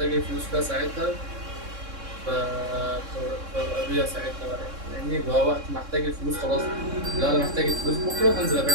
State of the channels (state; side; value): late; left; 3.6 ms